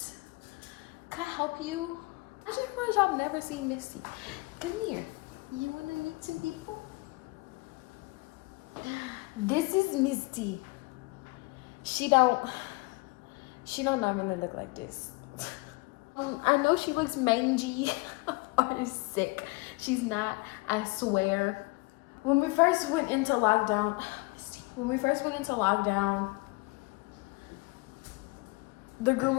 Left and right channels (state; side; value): quieter; right; 25.3 dB